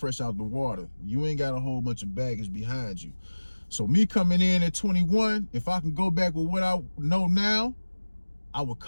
out the water. You ain't got a whole bunch of baggage behind you. So me coming in at 21, if I can go back with what I know now, I would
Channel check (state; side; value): inverted; both; correlation -1.00